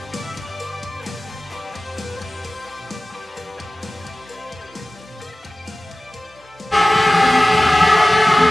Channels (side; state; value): both; normal; correlation 0.97